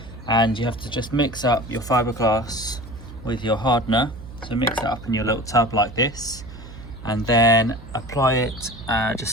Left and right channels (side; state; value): right; noise; hum, 15 dB below the sound